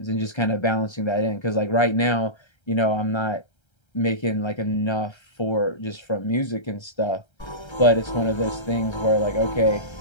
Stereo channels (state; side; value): late; right; 1.3 ms